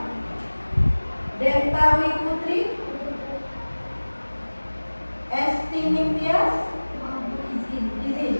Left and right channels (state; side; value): inverted; both; correlation -1.00